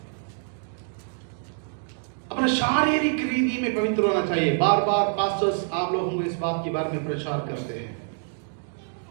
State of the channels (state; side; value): silent; left; digital silence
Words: अपने शारीरिक रीति में पवित्र होना चाहिए। बार बार पास्टर्स आप लोगों को इस बात के बारे में प्रचार करते हैं,